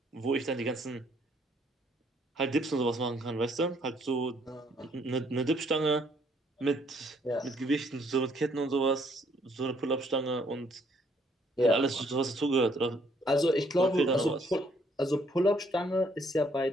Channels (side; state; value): both; normal; correlation 0.67